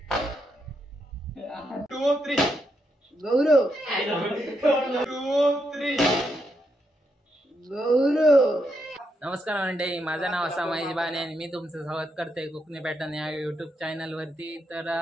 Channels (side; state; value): both; normal; correlation 0.81